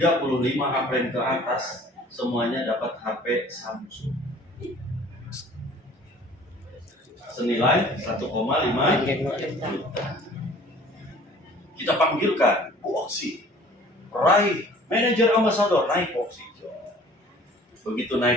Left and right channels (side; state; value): both; normal; correlation 0.50